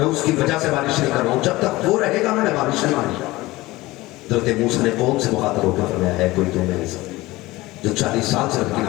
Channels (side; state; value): right; quieter; 19.4 dB